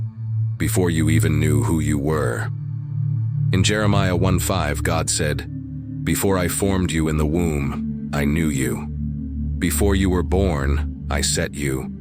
before you even knew who you were. In Jeremiah 1:5, God said, "Before I formed you in the womb, I knew you. Before you were born, I set you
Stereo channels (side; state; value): both; identical; correlation 1.00